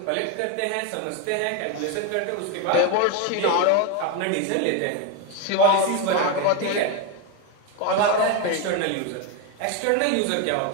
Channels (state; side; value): different; both; correlation 0.02